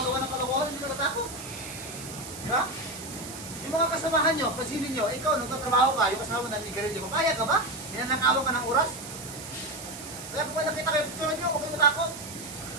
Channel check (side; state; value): right; noise; hiss, 12 dB below the sound